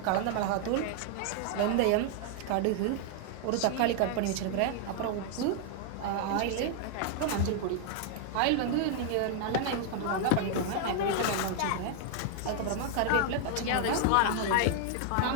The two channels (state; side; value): different; both; correlation 0.00